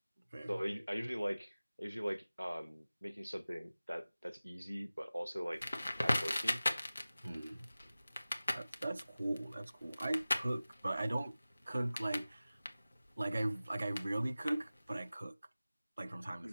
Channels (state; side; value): inverted; both; correlation -0.97